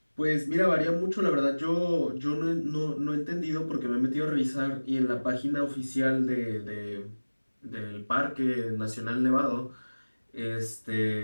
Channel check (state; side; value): inverted; both; correlation -1.00